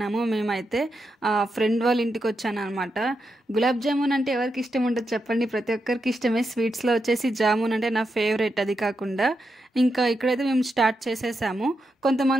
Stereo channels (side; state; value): both; normal; correlation 0.85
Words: మేమైతే ఫ్రెండ్ వాళ్ళ ఇంటికి వచ్చాను అనమాట. గులాబ్ జామున్ అంటే ఎవరికి ఇష్టం ఉంటుంది చెప్పండి? ప్రతి ఒక్కరికి ఇష్టమే. స్వీట్స్లో వచ్చేసి జామున్ అంటే నా ఫేవరెట్. అది కాకుండా ఇంకా ఇక్కడైతే మేము స్టార్ట్ చేసేసాము.